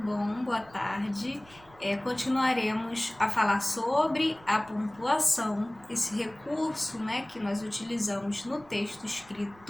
Boa tarde. Continuaremos a falar sobre a pontuação, esse recurso, que nós utilizamos no texto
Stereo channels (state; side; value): noise; right; rumble, 25 dB below the sound